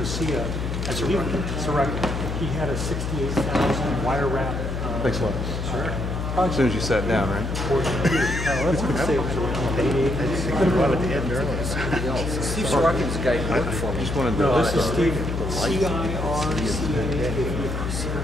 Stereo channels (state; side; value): noise; left; hum, 3 dB below the sound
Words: I believe he had a 68,000 wire wrap. Thanks a lot. Sure. Probably as soon as you sat down, right? Let's say it was around 88. I just think about it at the end earlier. Steve Sorokin's the guy who worked for me. Just wanted to. No, this is Steve. C-I-R-C-A.